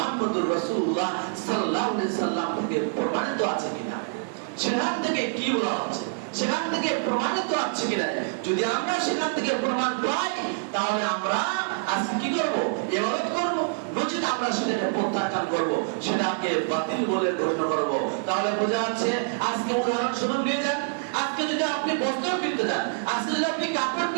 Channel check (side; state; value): left; silent; digital silence